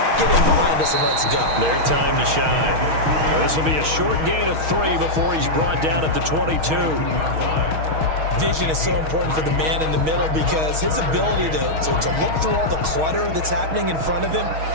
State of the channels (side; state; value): left; late; 6.4 ms